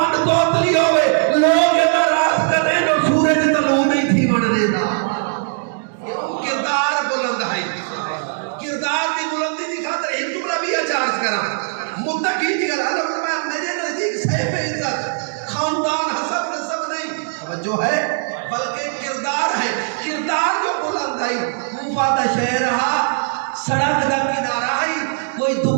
توتلی ہوئے لوگ ناراض کر رہے ہیں سورج طلوع نہیں تھی بن دیتا کردار بلند ہے کردار کی بلندی دی خاطر ایک جملہ بھی اچارج کرا متقی دی گل اللہ فرمایا میرے نزدیک صاحب عزت خاندان حسب نسب نہیں توجہ ہے بلکہ کردار ہے کردار جو بلند ہے کوفہ دا شہر رہا سڑک دا کنارہ ہے کوئی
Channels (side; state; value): left; silent; digital silence